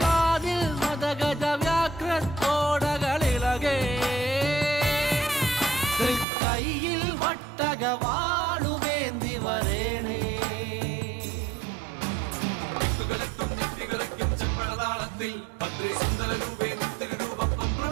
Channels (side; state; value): left; drops out; at 6.2 s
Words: കാതിൽ മദഗജ വ്യാഘ്രത്തോടകളിളകേ കൈയിൽ വട്ടകവാളുവേന്തി വരേണേ ചെമ്പഴതാളത്തിൽ ഭദ്രേ സുന്ദര രൂപേ നിത്യരൂപം